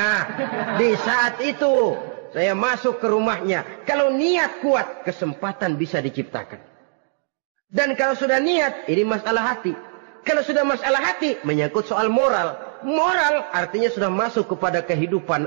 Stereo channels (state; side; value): silent; left; digital silence